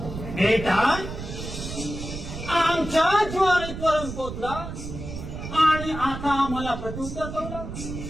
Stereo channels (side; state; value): right; noise; rumble, 8 dB below the sound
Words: बेटा आमच्या ज्वारीतवरून पोचला आणि आता आम्हाला प्रत्युत्तर करू